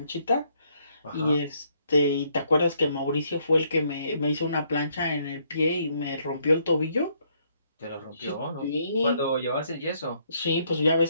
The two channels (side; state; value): both; inverted; correlation -0.70